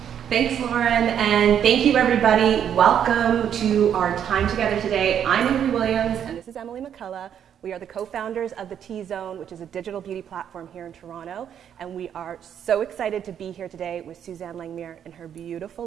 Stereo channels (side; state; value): left; quieter; 9.1 dB